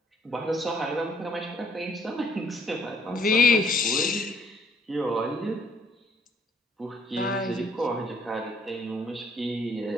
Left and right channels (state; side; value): normal; both; correlation 0.63